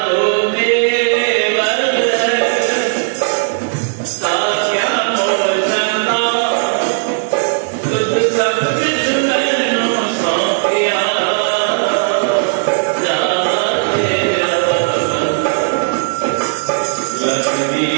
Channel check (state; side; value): silent; left; 61 dB below the other